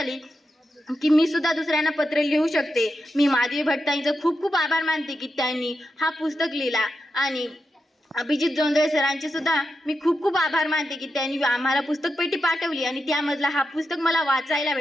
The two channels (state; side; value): normal; both; correlation 0.88